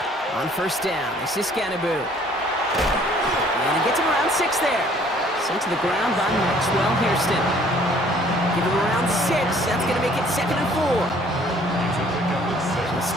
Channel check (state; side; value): normal; both; correlation 0.58